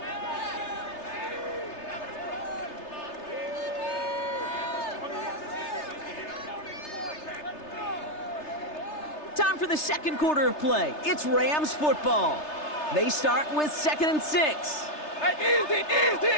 Time for the second quarter of play. It's Rams football. They start with 2nd and 6. Hey,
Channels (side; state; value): right; late; 3.3 ms